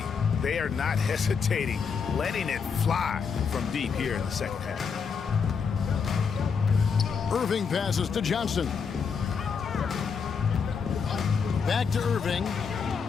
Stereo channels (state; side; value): quieter; right; 6.0 dB